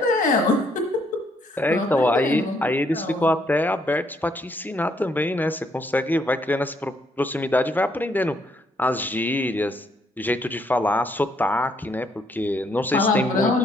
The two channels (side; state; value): both; normal; correlation 0.70